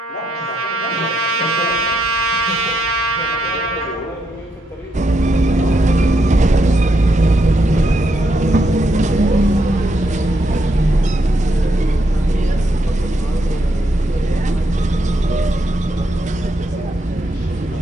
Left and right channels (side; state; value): both; normal; correlation 0.79